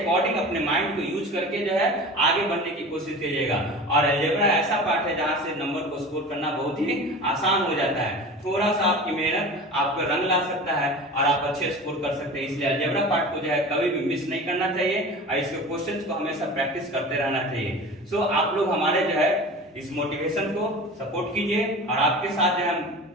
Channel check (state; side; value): normal; both; correlation 0.36